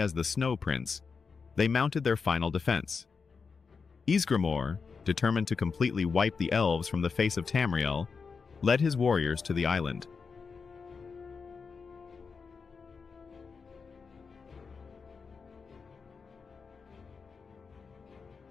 the Snow Prince, they mounted their final defense. Ysgramor, determined to completely wipe the elves from the face of Tamriel, led his warriors to the island.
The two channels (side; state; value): right; quieter; 5.2 dB